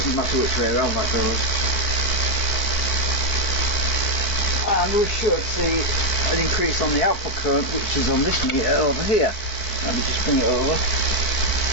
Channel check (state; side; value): late; right; 4.6 ms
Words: matter which way around that goes. And we should see an increase on the output current, which is on this meter over here. Let me just bring it over.